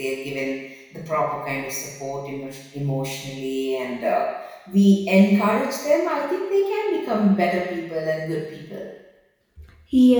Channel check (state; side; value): identical; both; correlation 1.00